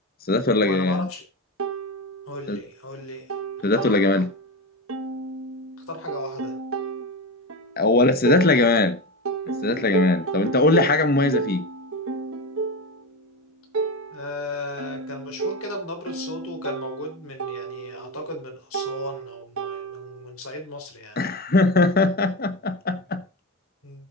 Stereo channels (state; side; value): normal; both; correlation 0.19